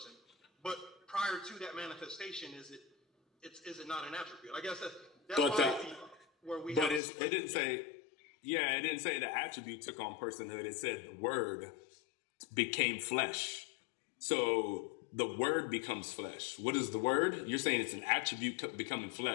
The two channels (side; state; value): right; drops out; at 7.0 s